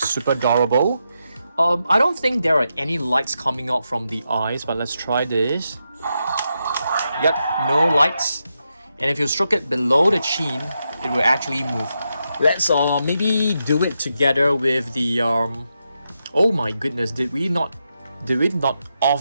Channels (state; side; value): inverted; both; correlation -0.85